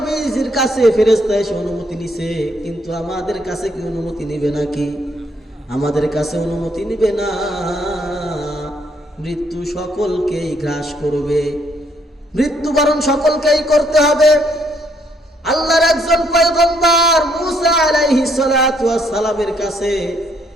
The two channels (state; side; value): normal; both; correlation 0.69